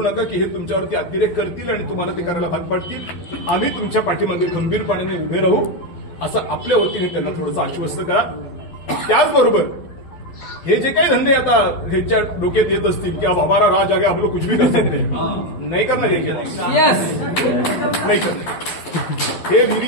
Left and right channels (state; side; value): late; right; 12 ms